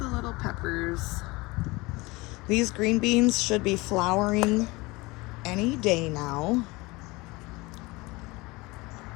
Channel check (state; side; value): quieter; right; 23.2 dB